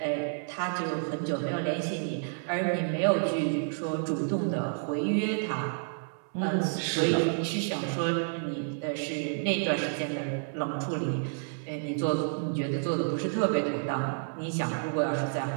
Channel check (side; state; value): left; silent; 58 dB below the other